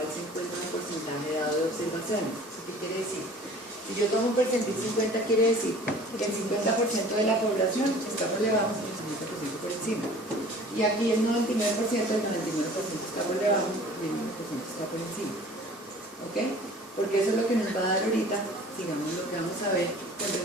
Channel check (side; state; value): both; normal; correlation 0.47